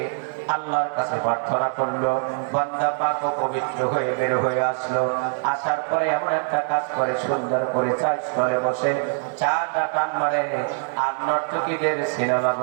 আল্লাহর কাছে প্রার্থনা করলো, বান্দা পাক ও পবিত্র হয়ে বের হয়ে আসলো, আসার পরে এমন একটা কাজ করে সুন্দর করে চার স্থলে বসে চাটা টান মারে আর নর্তকীদের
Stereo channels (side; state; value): left; silent; 63 dB below the other